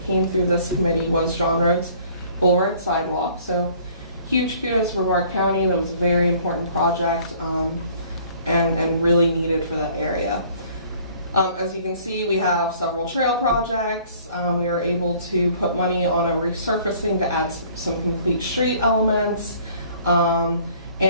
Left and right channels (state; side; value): inverted; both; correlation -0.56